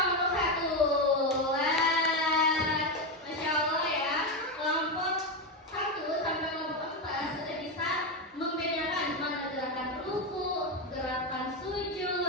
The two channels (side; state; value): both; normal; correlation 0.11